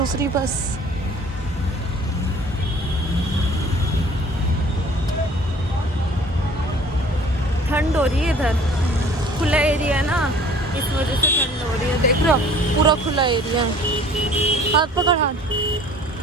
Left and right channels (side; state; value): both; normal; correlation 0.50